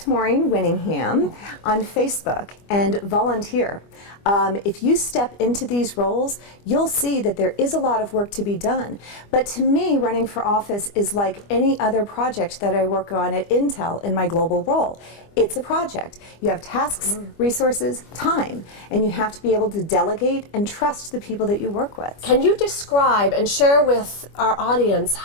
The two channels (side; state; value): right; late; 25 ms